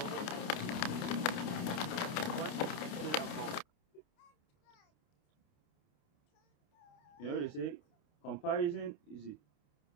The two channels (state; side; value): late; right; 29 ms